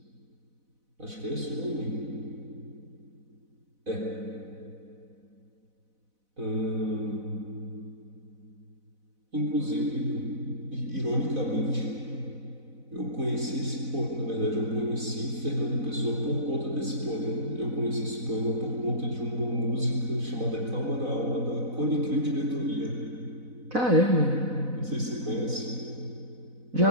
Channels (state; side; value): late; left; 4.0 ms